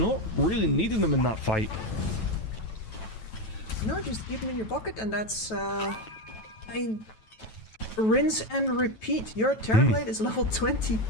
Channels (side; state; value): right; late; 9.2 ms